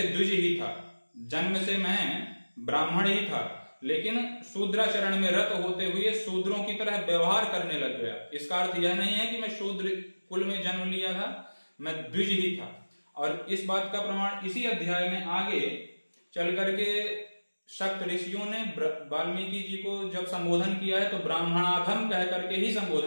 द्विज ही था, जन्म से मैं ब्राह्मण ही था, लेकिन शूद्राचरण में रत होते हुए शूद्रों की तरह व्यवहार करने लग गया। इसका अर्थ यह नहीं है कि मैं शूद्र कुल में जन्म लिया था, मैं द्विज ही था। और इस बात का प्रमाण इसी अध्याय में आगे चल करके शक्त ऋषियों ने वाल्मीकि जी को जब संबोधन किया है तो ब्राह्मणाधम कह करके ही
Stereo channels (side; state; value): both; inverted; correlation -1.00